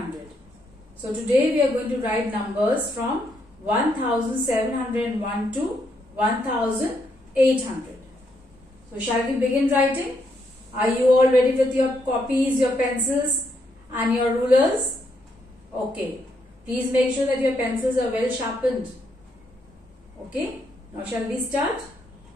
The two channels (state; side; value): normal; both; correlation 0.76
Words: So today we are going to write numbers from 1701 to 1800. So shall we begin writing? Are you all ready with your copies, your pencils and your rulers? Okay. Please make sure that your pencils are well sharpened. Okay. Now shall we start?